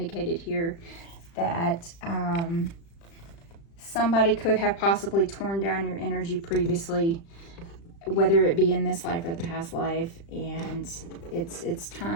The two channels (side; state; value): right; late; 36 ms